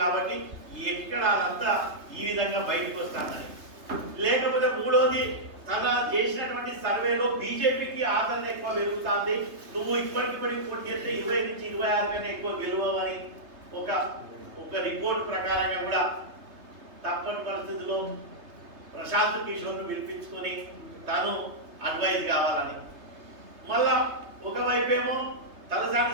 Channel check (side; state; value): left; late; 3.3 ms